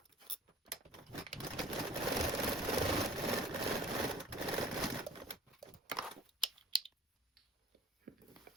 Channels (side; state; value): both; normal; correlation 0.49